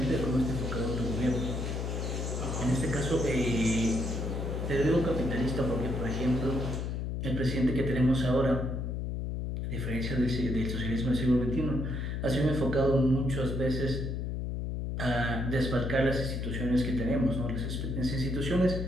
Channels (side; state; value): left; noise; hum, 2 dB below the sound